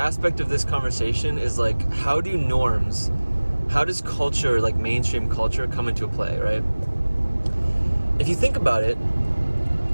of this conversation is like, how does culture, like mainstream culture, come into play, right? If you think about it,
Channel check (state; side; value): inverted; both; correlation -1.00